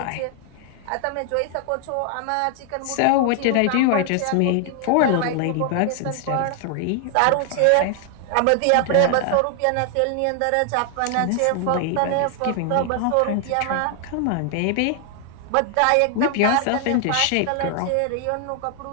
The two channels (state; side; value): different; both; correlation 0.00